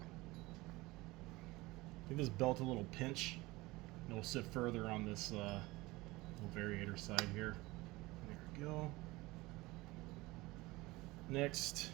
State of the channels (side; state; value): left; quieter; 20.9 dB